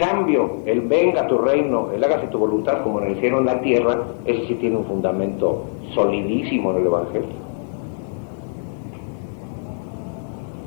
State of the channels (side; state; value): right; silent; digital silence